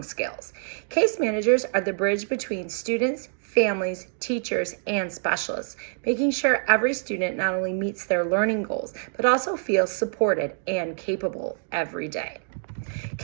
skills. Case managers are the bridge between students, families, teachers, and specialists, making sure every student not only meets their learning goals, but also feels supported and capable every day.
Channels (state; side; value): silent; left; 61 dB below the other